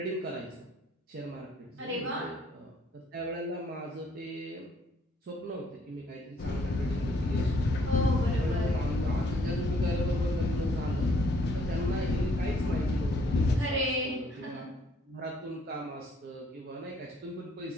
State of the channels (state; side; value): normal; both; correlation 0.65